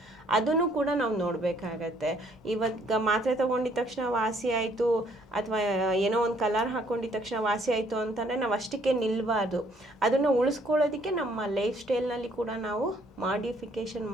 ಅದನ್ನು ಕೂಡ ನಾವು ನೋಡಬೇಕಾಗತ್ತೆ. ಇವಾಗ ಮಾತ್ರೆ ತೊಗೊಂಡಿದ ತಕ್ಷಣ ವಾಸಿ ಆಯಿತು, ಅಥವಾ ಏನೋ ಒಂದು ಕಲರ್ ಹಾಕ್ಕೊಂಡಿದ್ದ ತಕ್ಷಣ ವಾಸಿ ಆಯಿತು ಅಂತಂದರೆ ನಾವು ಅಷ್ಟಕ್ಕೆ ನಿಲ್ಲಬಾರ್ದು. ಅದನ್ನು ಉಳಿಸ್ಕೊಳ್ಳೋದಕ್ಕೆ ನಮ್ಮ ಲೈಫ್ ಸ್ಟೈಲ್ನಲ್ಲಿ ಕೂಡ ನಾವು ಮಾಡಿಫಿಕೇಷನ್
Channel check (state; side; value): normal; both; correlation 0.64